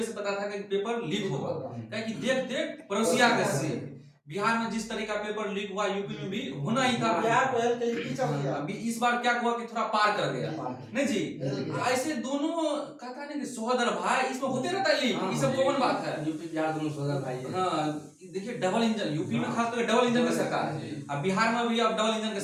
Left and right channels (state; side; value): identical; both; correlation 1.00